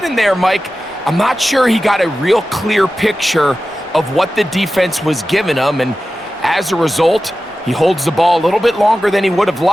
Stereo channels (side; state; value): both; normal; correlation 0.94